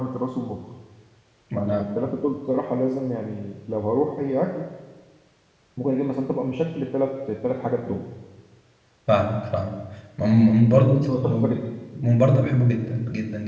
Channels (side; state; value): both; identical; correlation 1.00